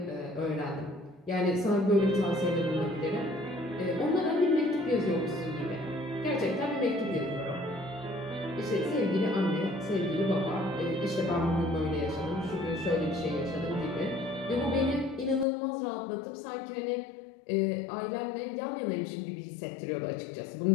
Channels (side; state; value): right; drops out; at 15.5 s